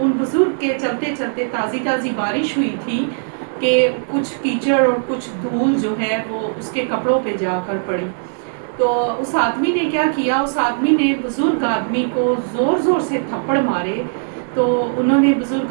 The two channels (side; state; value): left; silent; 63 dB below the other